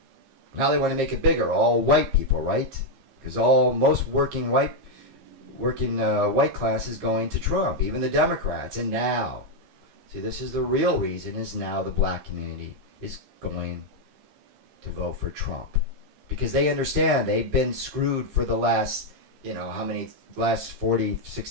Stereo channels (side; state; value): left; late; 15 ms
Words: Now they want to make it bigger. All white people, right? Because most working white class is going to Trump, even the Democrats. And now, see, this is the real reason, is now the black community is going to vote for Trump. Because they understand they've been screwed for the last, last 40,